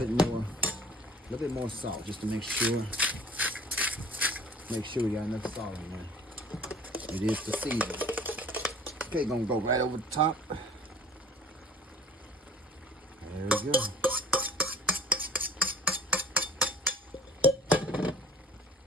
bit more salt just to make sure we got enough salt in there. It is the season. Okay, gonna go right over the top. There we go.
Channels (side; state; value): both; normal; correlation 0.49